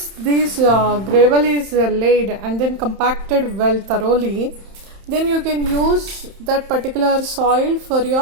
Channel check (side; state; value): left; late; 31 ms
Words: this gravel is laid and then compacted well thoroughly, then you can use that particular soil for